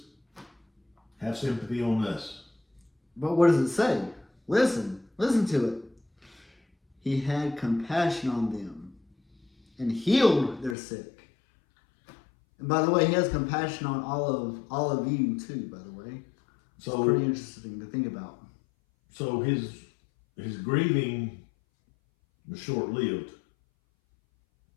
have sympathy on us. But what does it say? Listen to it. He had compassion on them and healed their sick. And by the way, he has compassion on all of you too, by the way. So it's pretty interesting to think about. So his grieving was short-lived.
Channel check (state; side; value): drops out; right; at 10.8 s